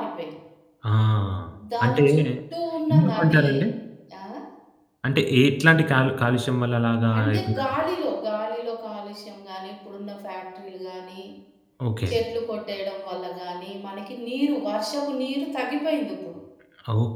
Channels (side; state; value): both; identical; correlation 1.00